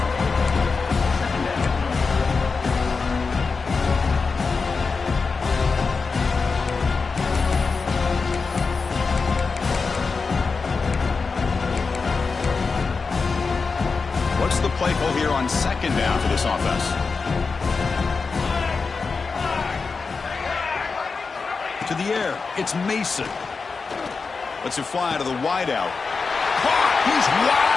What's the play call here on 2nd down for this offense? To the air. It's Mason. Lets it fly to the wideout. He's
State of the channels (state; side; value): quieter; right; 4.6 dB